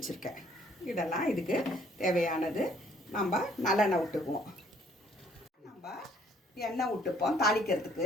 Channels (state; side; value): normal; both; correlation 0.62